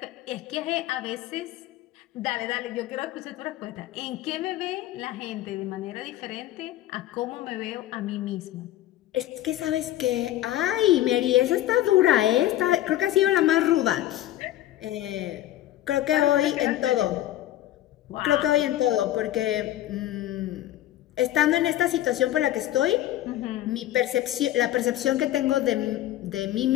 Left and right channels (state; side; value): quieter; right; 14.0 dB